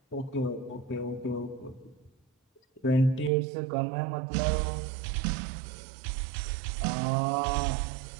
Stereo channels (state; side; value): drops out; left; at 3.3 s